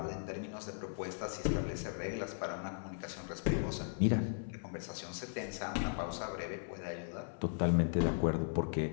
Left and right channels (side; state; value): right; silent; 53 dB below the other